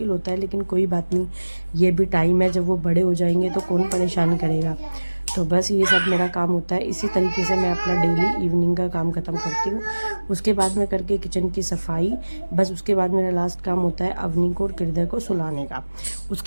होता है, लेकिन कोई बात नहीं, ये भी टाइम है। जब वो बड़े हो जाएंगे तो कौन परेशान करेगा। तो बस ये सब मेरा काम होता है। इसी तरीके से मैं अपना डेली इवनिंग का काम ख़त्म करती हूँ। उसके बाद में करके किचन की सफाई, बस उसके बाद मेरा लास्ट काम होता है अवनी को और हृदय को सुलाने का।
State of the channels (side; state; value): both; inverted; correlation -1.00